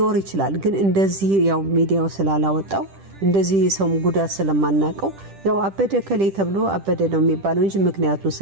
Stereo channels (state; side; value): late; left; 10 ms